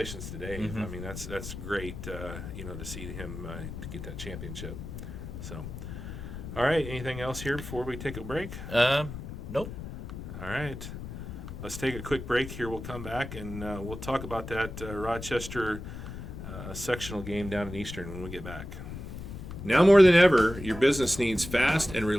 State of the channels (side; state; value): left; noise; rumble, 9 dB below the sound